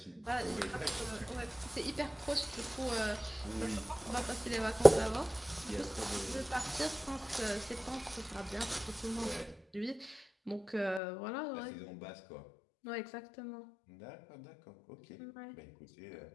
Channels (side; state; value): right; drops out; at 11.0 s